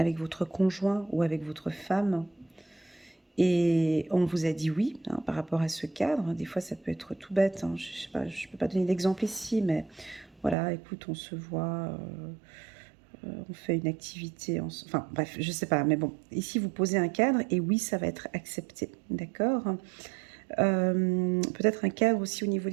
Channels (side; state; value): left; drops out; at 10.6 s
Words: votre conjoint ou avec votre femme et on vous a dit oui hein, par rapport à ce cadre. Des fois, ça peut être tout bête. Hein. Je sais pas, je ne peux pas donner d'exemple ici, mais voilà, écoute, on se voit, on fait une activité. Enfin, bref, je ne sais pas. Mais bon, ici, vous posez un cadre et oui, ça va être accepté. D'accord? Peut-être un cadre aussi au niveau